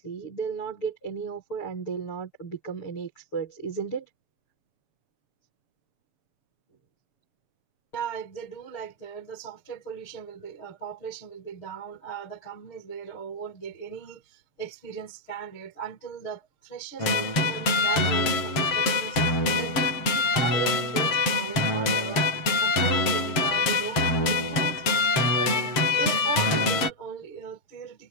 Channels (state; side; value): late; right; 7.6 ms